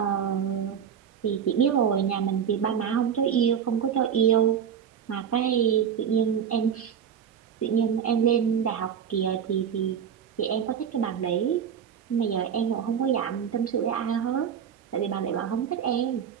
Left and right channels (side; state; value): left; quieter; 8.2 dB